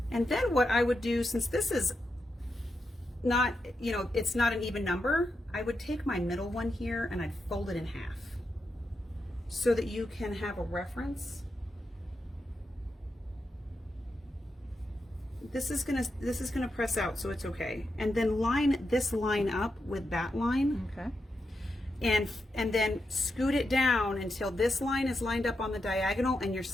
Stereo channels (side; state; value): both; normal; correlation 0.86